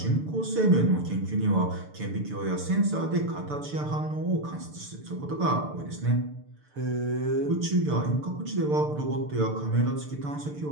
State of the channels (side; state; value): left; late; 6.8 ms